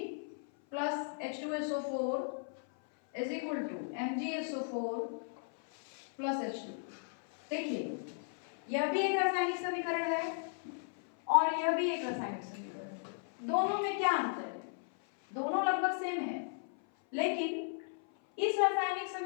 + H2SO4 = MgSO4 + H2। देखिए, यह भी एक रासायनिक समीकरण है और यह भी एक रासायनिक समीकरण है। दोनों में क्या अंतर है? दोनों लगभग सेम है, लेकिन इस रासायनिक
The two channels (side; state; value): right; silent; 54 dB below the other